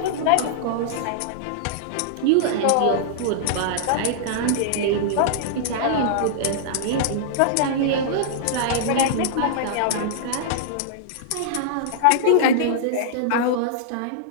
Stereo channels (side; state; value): both; different; correlation -0.02